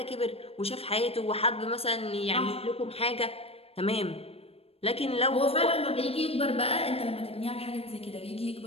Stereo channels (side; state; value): right; late; 0.28 ms